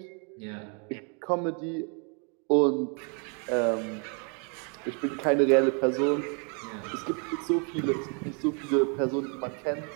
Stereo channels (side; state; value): left; quieter; 37.3 dB